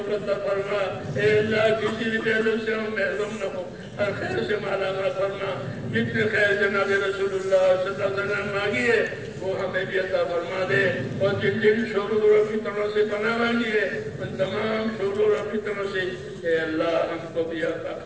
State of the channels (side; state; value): both; identical; correlation 1.00